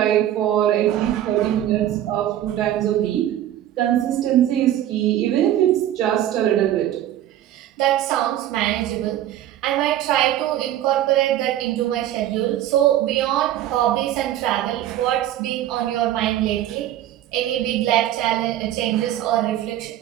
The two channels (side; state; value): left; quieter; 12.4 dB